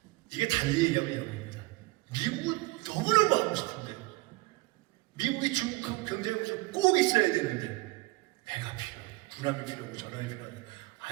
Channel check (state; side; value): quieter; left; 22.0 dB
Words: 이게 달리 얘기하면 이런 겁니다. 미국은 너무너무 하고 싶은데 미국이 중국하고 경쟁하면서 꼭 있어야 되는데 배가 필요해요. 군함이 필요하고 전함이 필요하고